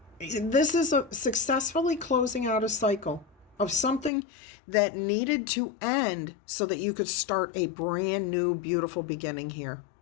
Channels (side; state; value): right; drops out; at 4.1 s